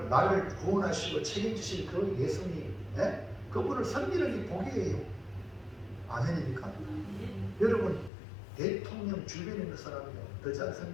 나를 구원하시고 책임지실 그 예수님, 그분을 섬기는 게 복이에요. 아멘입니까? 여러분, 대통령 주변에 있는 사람이요, 더 잘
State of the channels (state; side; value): drops out; right; at 8.1 s